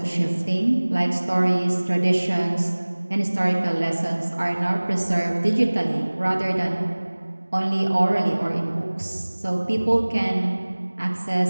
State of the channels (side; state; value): both; inverted; correlation -1.00